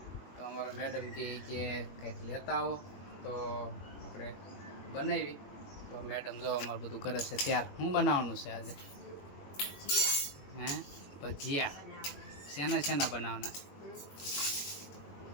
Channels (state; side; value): late; right; 21 ms